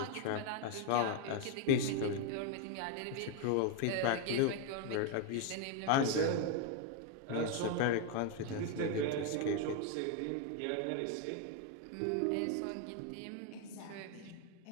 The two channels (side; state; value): both; different; correlation 0.01